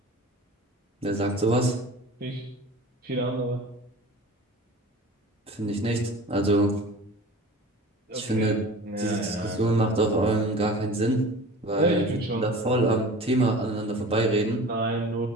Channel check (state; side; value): normal; both; correlation 0.40